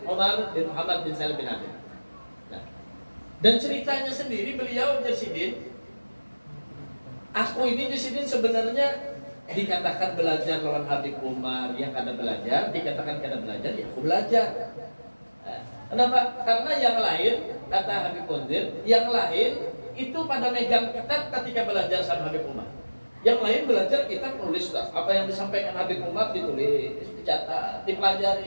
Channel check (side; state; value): both; inverted; correlation -1.00